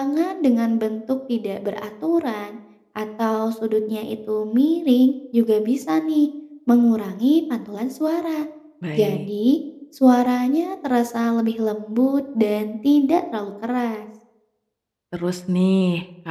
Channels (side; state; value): both; identical; correlation 1.00